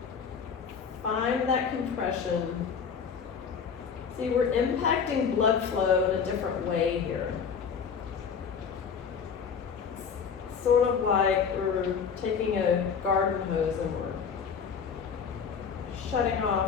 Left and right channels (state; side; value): quieter; right; 6.5 dB